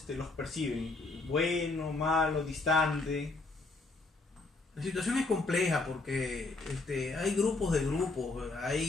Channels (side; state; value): right; quieter; 3.4 dB